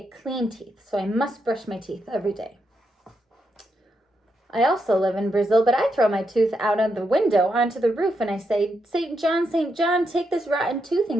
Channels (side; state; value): both; normal; correlation 0.82